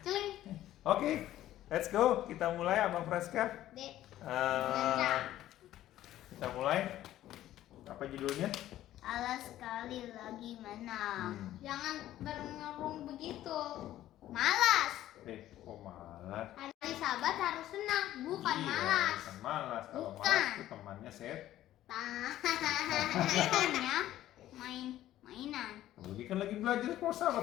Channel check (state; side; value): quieter; right; 13.5 dB